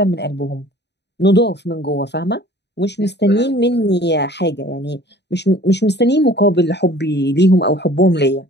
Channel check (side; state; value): right; late; 0.50 ms